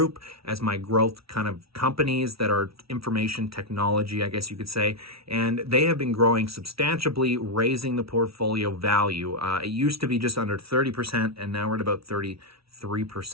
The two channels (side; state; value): left; late; 0.75 ms